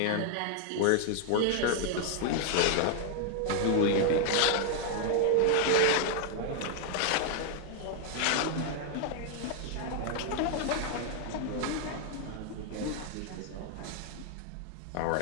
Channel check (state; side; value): different; both; correlation 0.00